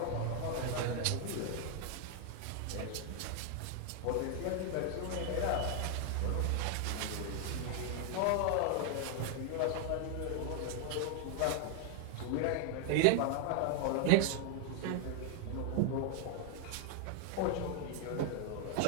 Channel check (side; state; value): both; different; correlation 0.00